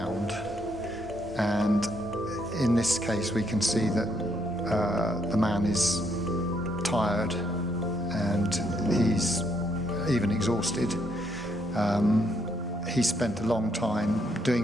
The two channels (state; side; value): normal; both; correlation 0.73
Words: and in this case we can see that the man is tired and he's even exhausted. He spent a long time